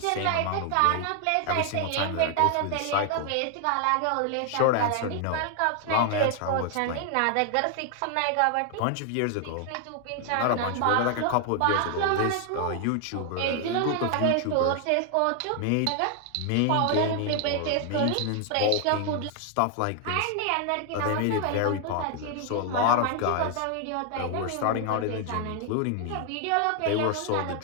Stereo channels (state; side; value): different; both; correlation 0.00